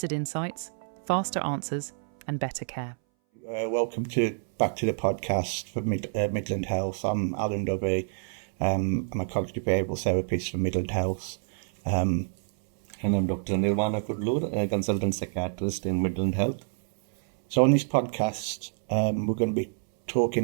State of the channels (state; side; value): silent; left; 60 dB below the other